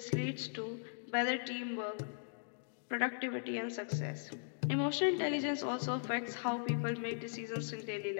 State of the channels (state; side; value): silent; right; digital silence